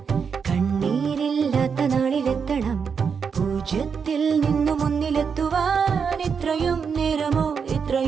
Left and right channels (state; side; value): quieter; left; 6.2 dB